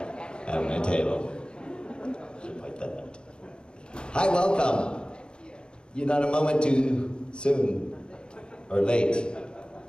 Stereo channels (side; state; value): right; late; 0.051 ms